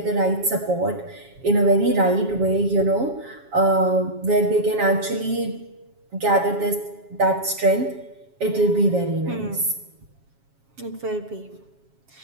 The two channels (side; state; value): left; late; 7.3 ms